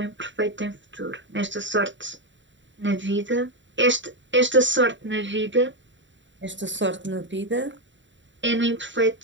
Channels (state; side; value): late; left; 0.54 ms